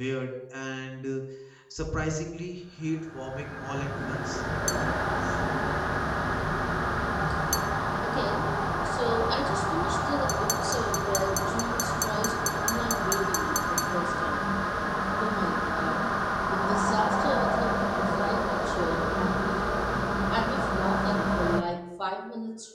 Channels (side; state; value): both; identical; correlation 1.00